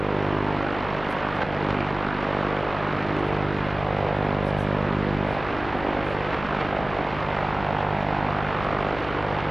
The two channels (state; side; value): noise; left; rumble, 14 dB below the sound